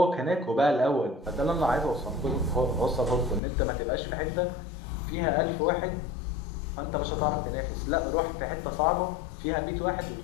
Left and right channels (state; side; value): drops out; right; at 3.4 s